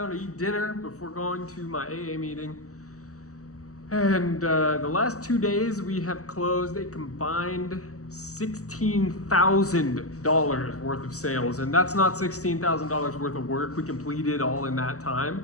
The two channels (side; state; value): right; late; 0.66 ms